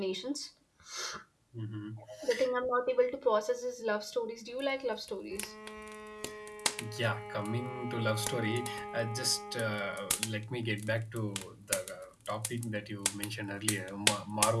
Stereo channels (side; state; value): both; identical; correlation 1.00